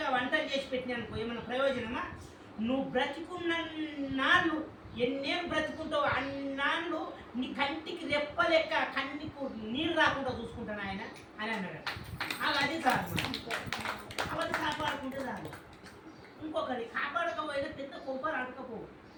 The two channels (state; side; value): identical; both; correlation 1.00